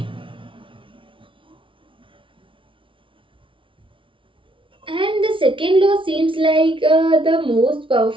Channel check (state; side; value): late; left; 0.25 ms